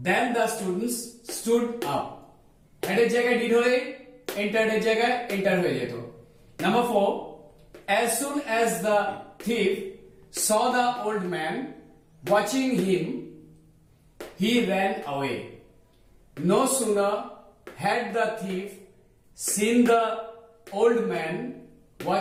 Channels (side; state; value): both; identical; correlation 1.00